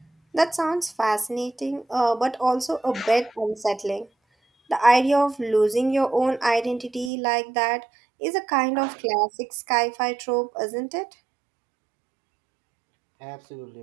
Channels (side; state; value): left; drops out; at 7.1 s